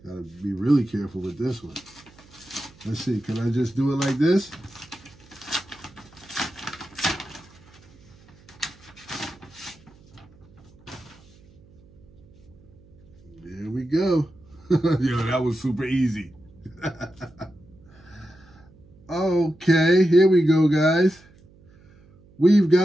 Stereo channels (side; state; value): right; noise; hum, 26 dB below the sound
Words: Gotta be really careful with this one. Let's see, can I just do it like this? There we go. Yo, that was super easy. Okay, here we go, guys. We've